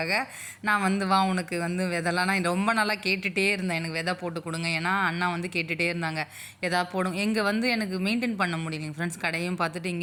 நான் வந்து உனக்கு வந்து விதைலாம் நான் ரொம்ப நாளாக கேட்டுகிட்டே இருந்தேன், எனக்கு விதை போட்டு கொடுங்க. ஏன்னா அண்ணா வந்து கேட்டுகிட்டே இருந்தாங்க எதாவது போடும். இங்கே வந்து எனக்கு மெயின்டைன் பண்ண முடியலைங்க ஃப்ரெண்ட்ஸ். கடையும் பார்த்துட்டு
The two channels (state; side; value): identical; both; correlation 1.00